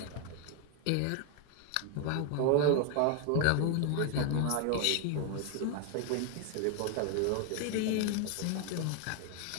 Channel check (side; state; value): both; different; correlation 0.00